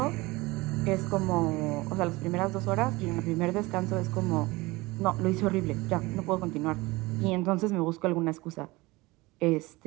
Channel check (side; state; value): left; quieter; 21.9 dB